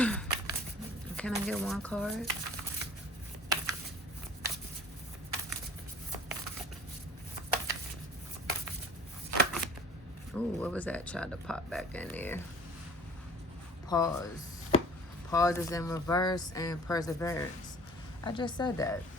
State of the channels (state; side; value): normal; both; correlation 0.49